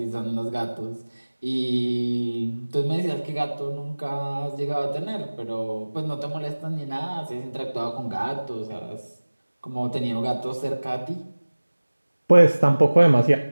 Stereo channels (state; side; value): inverted; both; correlation -1.00